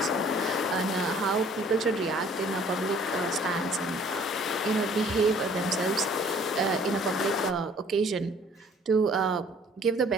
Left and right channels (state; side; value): normal; both; correlation 0.55